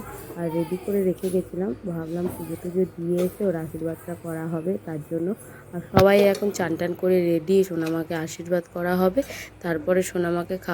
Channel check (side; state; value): both; identical; correlation 1.00